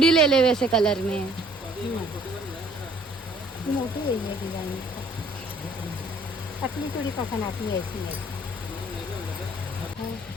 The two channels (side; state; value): both; normal; correlation 0.58